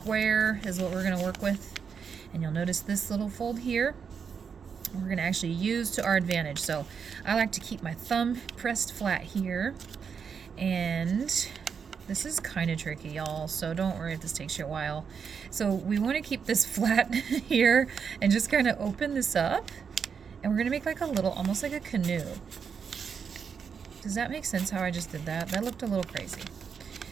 is what we're going to work with. And you'll notice this little fold here, we're going to actually use to our advantage. So I like to keep my thumb pressed flat here. And this is kind of tricky, y'all, so don't worry if this takes you a while. So we want to keep this flat here and just kind of open this up. And we're going to make like a little, almost like a canoe. Does that make sense how I just did that? That looked a little crazy.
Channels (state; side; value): quieter; left; 6.5 dB